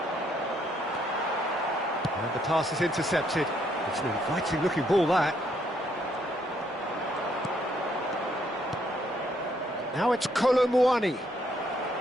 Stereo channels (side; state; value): both; normal; correlation 0.71